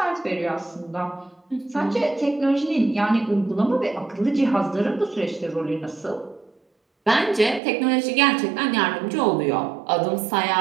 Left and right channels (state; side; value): drops out; left; at 7.6 s